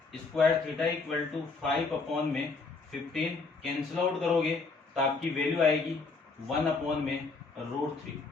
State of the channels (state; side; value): quieter; right; 4.1 dB